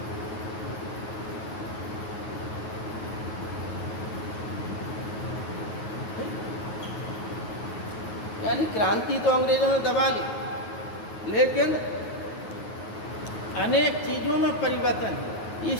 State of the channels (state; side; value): late; right; 9.4 ms